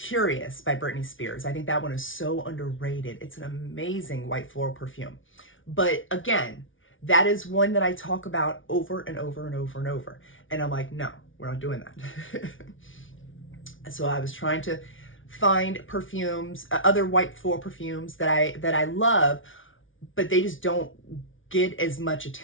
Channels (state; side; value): late; right; 0.57 ms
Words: by Britney Spears. I think that one is so underrated. It's an amazing white floral perfume. But again, that is one that I talk about over and over and over and over. And I'm like, no, we're not doing that. So I was trying to find perfumes, other white floral perfumes that I love, but they just don't get as much